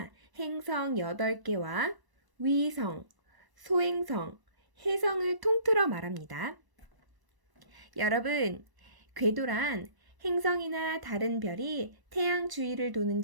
행성 8개와 위성, 소행성, 해성을 통틀어 말합니다. 여러분, 궤도란 행성이나 다른 별이 태양 주위를 도는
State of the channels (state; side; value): late; left; 1.0 ms